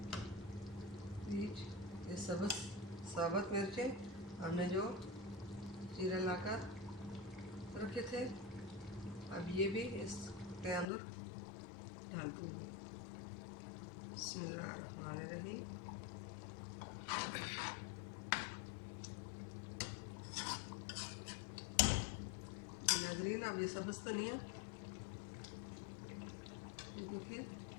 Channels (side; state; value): right; drops out; at 10.9 s